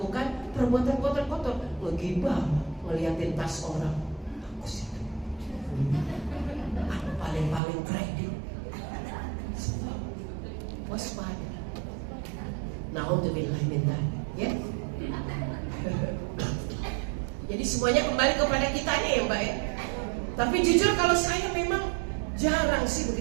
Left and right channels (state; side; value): drops out; left; at 7.6 s